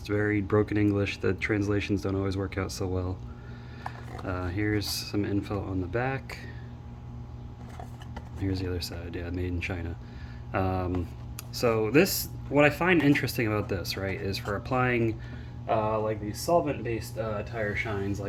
very broken English. The translations don't always work out so well. Here's some info on the back. Here's the other side. Yeah, made in China. So this, what I find interesting about this, right, is for applying like these solvent-based tire shines,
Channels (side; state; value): both; identical; correlation 1.00